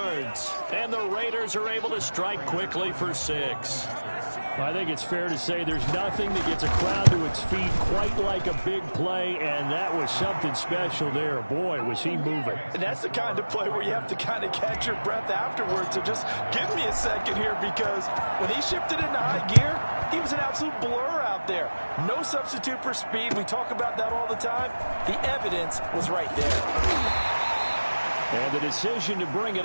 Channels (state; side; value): inverted; both; correlation -1.00